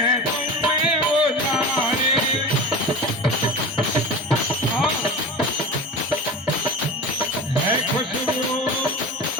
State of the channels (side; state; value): both; normal; correlation 0.30